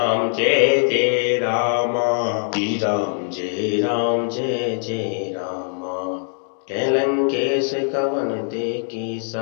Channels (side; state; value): right; silent; 59 dB below the other